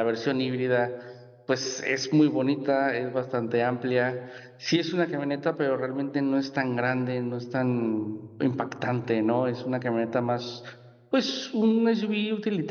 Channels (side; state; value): both; identical; correlation 1.00